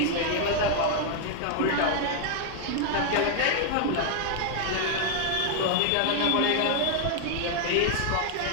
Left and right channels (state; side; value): different; both; correlation 0.00